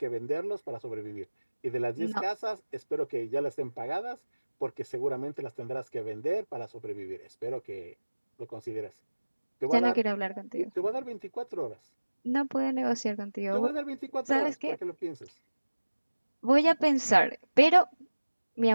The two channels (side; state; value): both; inverted; correlation -1.00